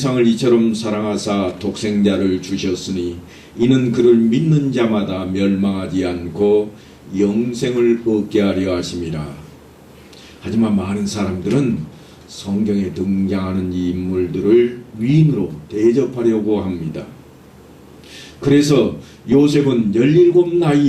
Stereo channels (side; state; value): both; identical; correlation 1.00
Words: 이처럼 사랑하사 독생자를 주셨으니 이는 그를 믿는 자마다 멸망하지 않고 영생을 얻게 하려 하심이라. 하지만 많은 사람들은 성경에 등장하는 이 인물들을 위인으로 대접하려고 합니다. 그래서 요셉은 17